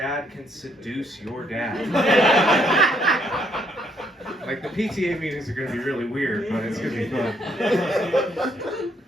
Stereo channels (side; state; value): both; normal; correlation 0.70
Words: can seduce your dad. Like, the PTA meetings are going to be really weird, but it's going to be fun.